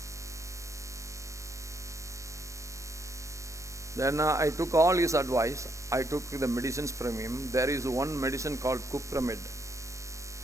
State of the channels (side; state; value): left; late; 0.15 ms